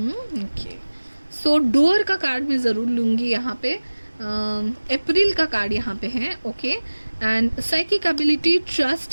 okay. So door का कार्ड मैं ज़रूर लूँगी यहाँ पे. अप्रैल का कार्ड यहाँ पे है. Okay. And psychic ability,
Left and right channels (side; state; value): both; inverted; correlation -1.00